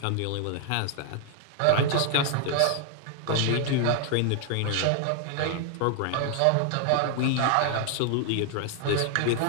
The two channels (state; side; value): different; both; correlation 0.00